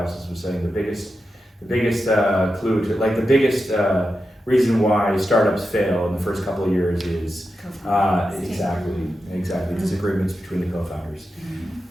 was saying the biggest clue to, like the biggest reason why startups fail in the first couple of years is exactly disagreements between the co-founders.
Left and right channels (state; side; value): normal; both; correlation 0.90